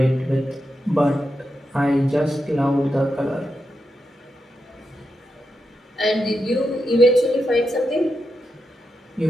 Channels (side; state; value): both; normal; correlation 0.87